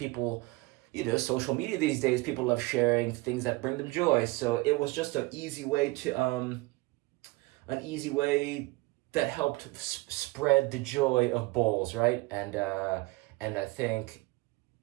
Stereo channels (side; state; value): left; quieter; 22.9 dB